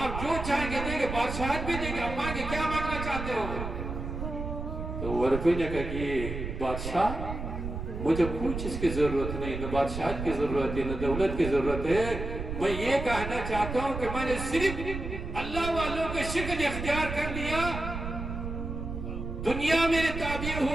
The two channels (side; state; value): right; noise; rumble, 6 dB below the sound